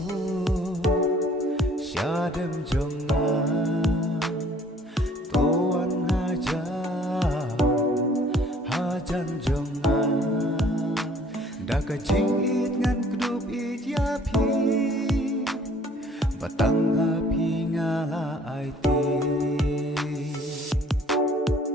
syadem jonga tuan hajan jonga daka jingit ngan kedup it yapi batang api ngala aiti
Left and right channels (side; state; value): both; normal; correlation 0.56